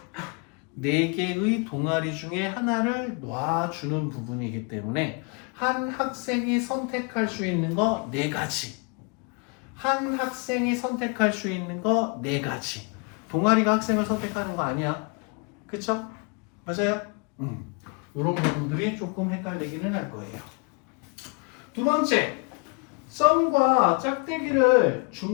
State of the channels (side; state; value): right; quieter; 32.3 dB